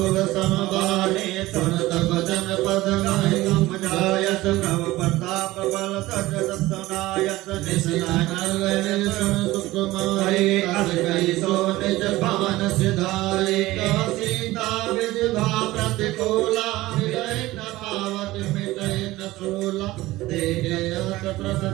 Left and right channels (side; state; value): left; quieter; 18.1 dB